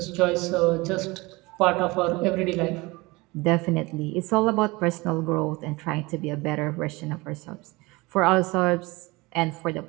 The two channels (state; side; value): quieter; left; 23.4 dB